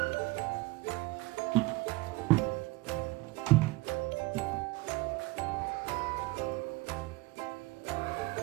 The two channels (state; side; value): quieter; left; 21.3 dB